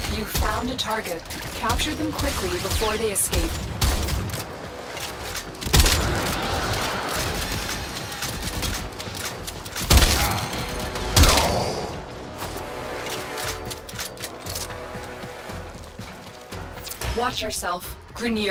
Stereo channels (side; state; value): both; identical; correlation 1.00